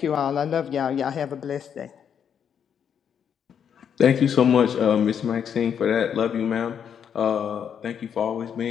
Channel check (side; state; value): right; quieter; 8.0 dB